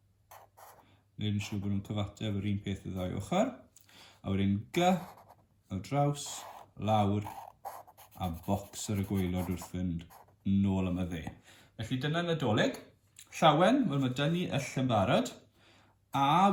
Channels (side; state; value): both; identical; correlation 1.00